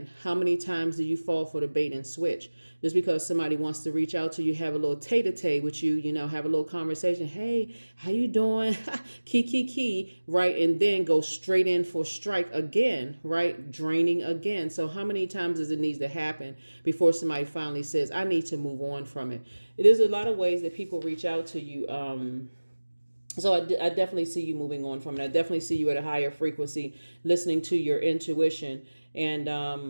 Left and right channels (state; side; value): inverted; both; correlation -1.00